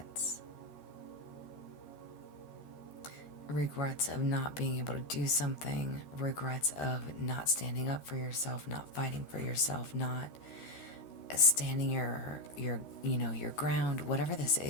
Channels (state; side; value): late; right; 13 ms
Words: Regrets of not being able to do something. Regrets of not standing up for yourself, not fighting for yourself, not standing your ground, whatever this